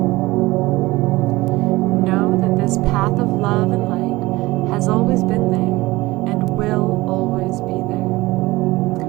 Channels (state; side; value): quieter; left; 19.8 dB